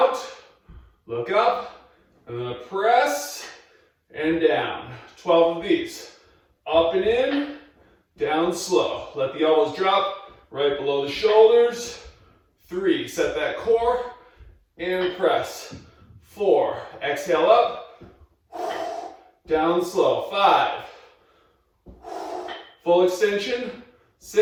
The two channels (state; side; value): identical; both; correlation 1.00